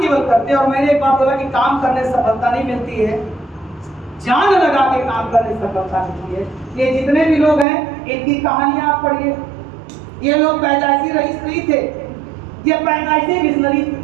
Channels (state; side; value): drops out; left; at 7.7 s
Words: करते हैं। और मैंने एक बात बोला कि काम करने से सफलता नहीं मिलती है, जान लगा के काम करने से सफलता मिलती है। ये जितने भी लोग हैं इनकी कहानियां आप पढ़िए, ये लोग पैदाइशी रईस नहीं थे, ये पैदाइशी विजनरी थे।